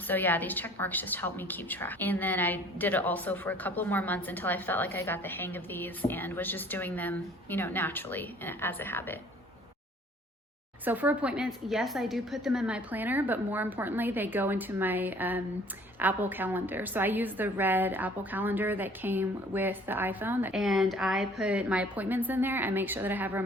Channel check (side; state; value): both; normal; correlation 0.54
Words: yeah, these check marks just help me keep track. And then I did it also for a couple more months until I felt like I got the hang of these and was just doing them, naturally as a habit. So for appointments, yes, I do put them in my planner, but more importantly, they go into my Apple Calendar. So I use the red Apple Calendar that came with the iPhone, and I put my appointments in there. I make sure that I have